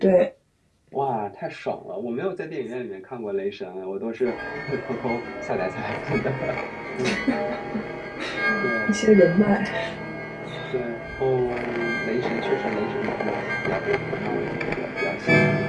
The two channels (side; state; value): both; identical; correlation 1.00